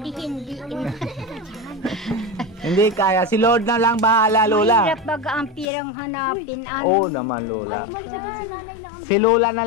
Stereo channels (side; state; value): right; drops out; at 5.7 s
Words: di hindi. Hindi kaya. Si Lord na lang bahala, Lola. Mahirap baga ang pirang hanapin. Oo naman, Lola. Si Lola